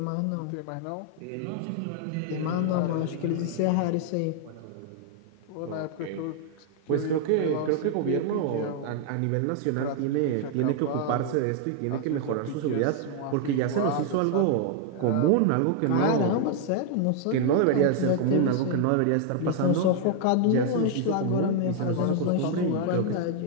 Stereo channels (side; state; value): both; different; correlation 0.00